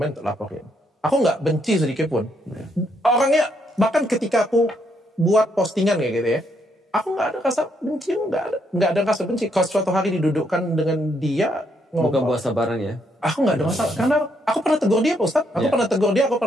untuk laporin. Aku nggak benci sedikit pun. Orangnya, bahkan ketika aku buat postingan kayak gitu ya, aku nggak ada rasa benci, nggak ada rasa benci. Kalau suatu hari didudukkan dengan dia, bukan puasa bareng ya. Aku nggak ada masalah, karena aku pernah tegur dia Pak Ustadz. Aku pernah tegur dia, aku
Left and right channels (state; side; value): normal; both; correlation 0.74